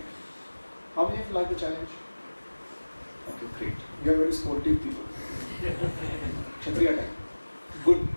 How many of you like the challenge? Okay, great. You are very sportive people. Kshatriya type.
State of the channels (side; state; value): both; inverted; correlation -1.00